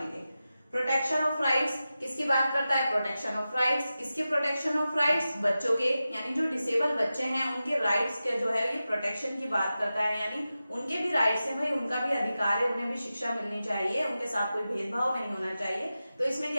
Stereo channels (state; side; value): inverted; both; correlation -0.93